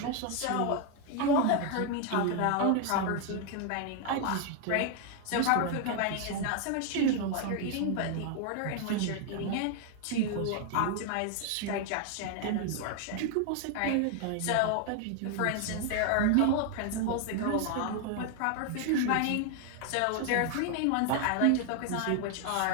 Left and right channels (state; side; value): different; both; correlation 0.00